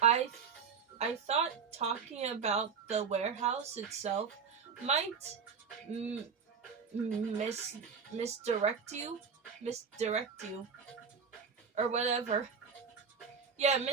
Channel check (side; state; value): left; quieter; 6.2 dB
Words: thought talking about the warehouse itself might misdirect you, or whatever. Yeah,